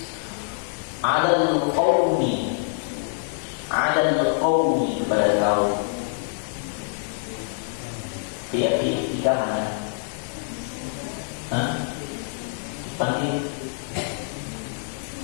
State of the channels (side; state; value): right; silent; 61 dB below the other